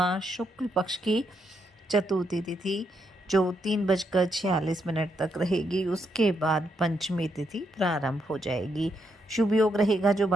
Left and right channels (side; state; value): both; normal; correlation 0.79